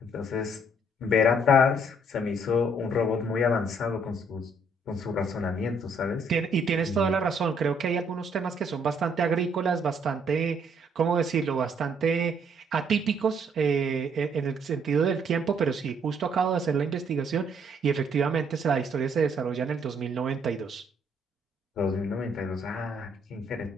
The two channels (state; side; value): normal; both; correlation 0.67